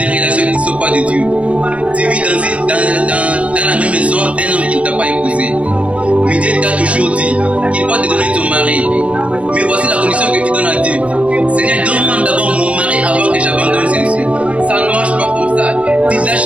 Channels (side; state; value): left; late; 0.063 ms